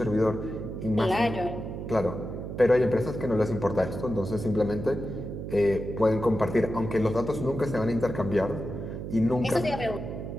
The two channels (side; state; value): right; noise; hum, 7 dB below the sound